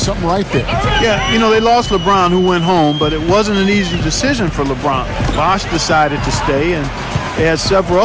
right there. Yeah, you know, they lost LeBron, who went home, but it wasn't an easy decision for LeBron. Bosch decided to stay, and they had several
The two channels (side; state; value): both; identical; correlation 1.00